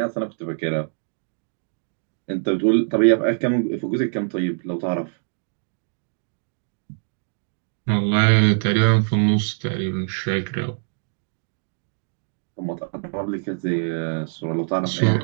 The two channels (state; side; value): silent; left; digital silence